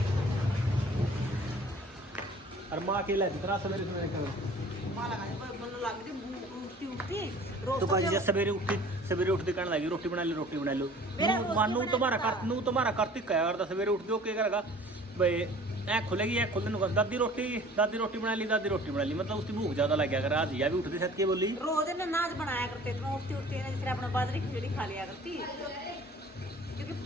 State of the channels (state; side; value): normal; both; correlation 0.48